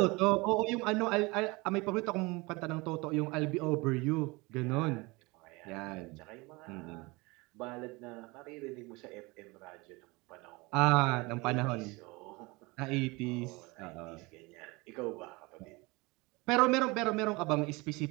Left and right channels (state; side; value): quieter; left; 24.7 dB